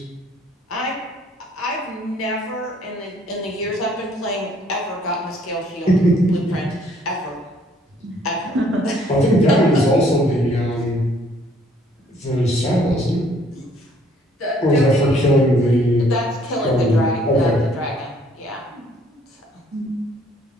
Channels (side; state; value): both; normal; correlation 0.62